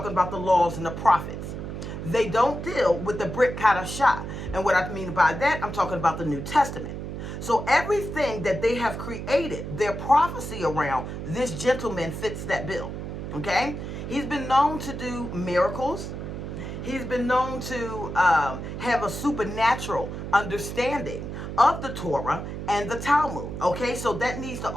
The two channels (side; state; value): right; noise; hum, 7 dB below the sound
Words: about the laws and the prophets. They don't deal with the Brit Kadashah. And what I mean by that, I'm talking about the New Testament. So everything that they have created, their prophecy around, this gentleman fits that bill, okay? He's been known to do miracles. He's been known to have a supernatural understanding of the Torah and the Talmud, okay? So that needs to